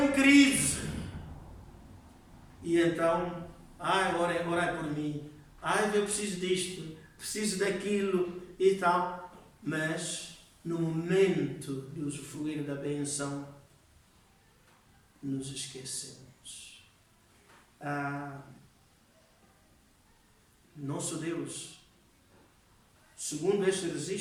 crise. E então, orai por mim, eu preciso disto, preciso daquilo e tal. Mas, no momento de usufruir da bênção, nos esquecemos. Nosso Deus, segundo este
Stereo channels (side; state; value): both; identical; correlation 1.00